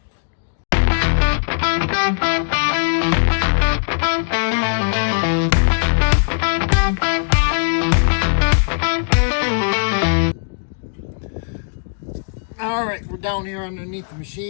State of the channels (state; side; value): silent; right; digital silence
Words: All right, we're down here underneath the